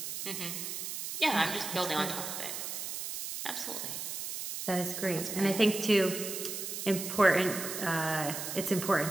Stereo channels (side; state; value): right; noise; hiss, 5 dB below the sound